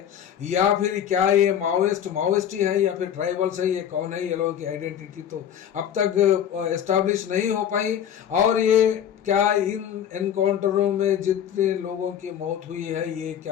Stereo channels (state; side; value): quieter; right; 9.5 dB